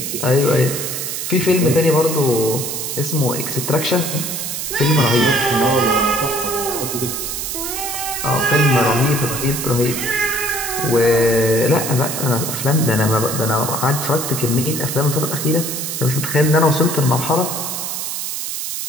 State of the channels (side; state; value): right; noise; hiss, 4 dB below the sound